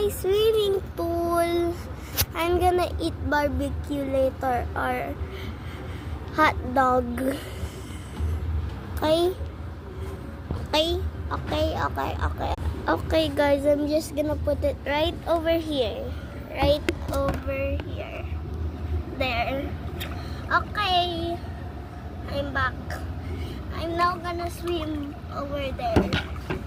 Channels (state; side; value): identical; both; correlation 1.00